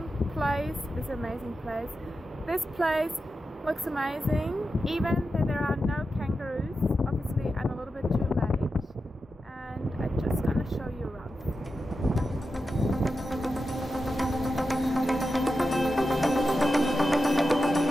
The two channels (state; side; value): normal; both; correlation 0.90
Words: place. This place looks amazing, even though there are no kangaroos. Obviously I'm a little bit too late and I'm just going to show you around.